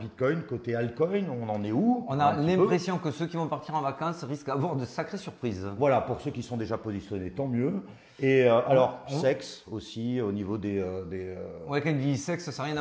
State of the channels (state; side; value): identical; both; correlation 1.00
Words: côté altcoin? On en est où? On a l'impression que ceux qui vont partir en vacances risquent d'avoir de sacrées surprises. Voilà, pour ceux qui sont déjà positionnés, tant mieux. Et alors, sexe aussi, au niveau des Ouais, quand il dit sexe, ça n'a rien